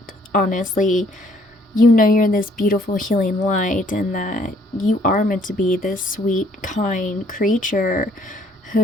Honestly, you know you're this beautiful healing light, and that you are meant to be this sweet, kind creature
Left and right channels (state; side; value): normal; both; correlation 0.63